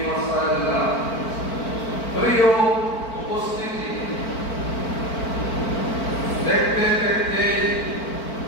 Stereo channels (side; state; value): right; late; 4.5 ms